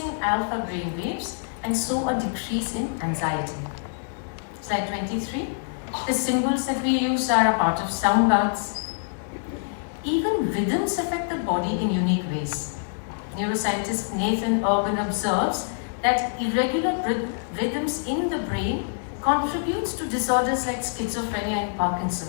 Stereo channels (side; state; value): right; silent; digital silence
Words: alpha brain waves and so a decrease in anxiety. Slide 23. The symbols that we use are a part of sound baths. Even rhythms affect the body in unique ways. Neuroscientist Nathan Urban observes that irregular rhythms in the brain contributes to disorders like schizophrenia and